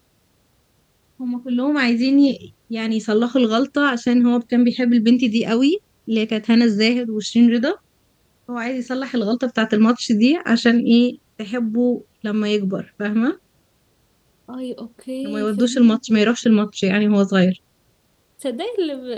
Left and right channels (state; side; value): identical; both; correlation 1.00